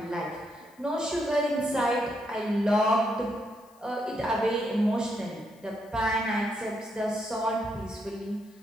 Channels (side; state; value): left; noise; hiss, 29 dB below the sound